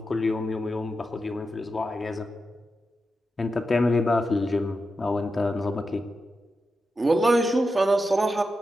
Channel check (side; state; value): both; normal; correlation 0.89